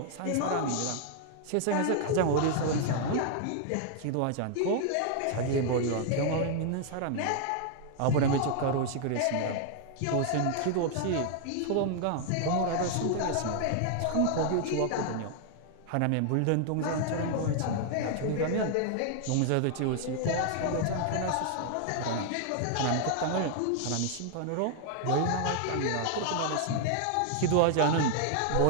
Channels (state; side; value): different; both; correlation 0.00